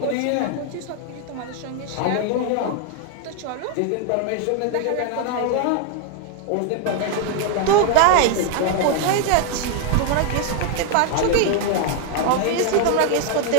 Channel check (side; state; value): both; different; correlation 0.00